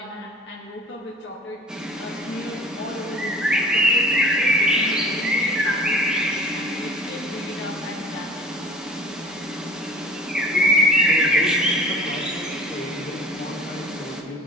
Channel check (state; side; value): normal; both; correlation 0.44